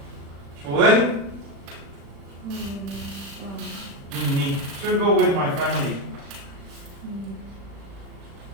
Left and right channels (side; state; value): left; late; 36 ms